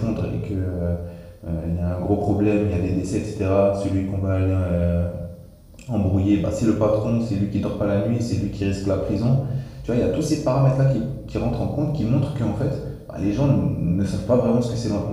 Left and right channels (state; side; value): identical; both; correlation 1.00